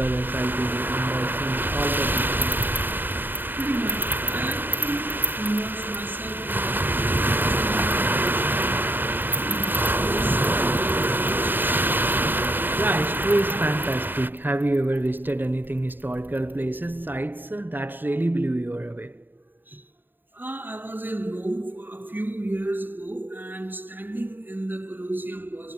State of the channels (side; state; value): left; late; 0.093 ms